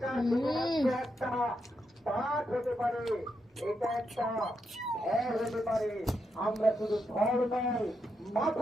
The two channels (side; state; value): both; normal; correlation 0.83